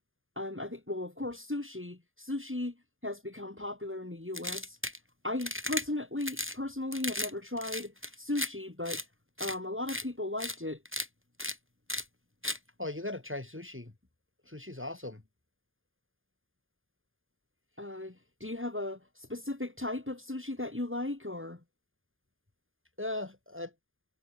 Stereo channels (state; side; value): late; left; 0.59 ms